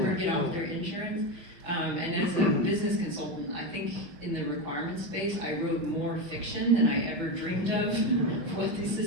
get off their insurance. And as a business consultant, I think in the requirement space, I wrote more fiction than I ever dreamed of what these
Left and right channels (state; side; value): late; left; 5.9 ms